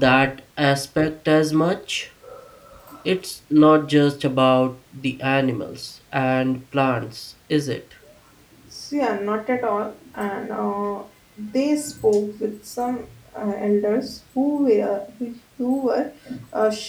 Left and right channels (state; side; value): identical; both; correlation 1.00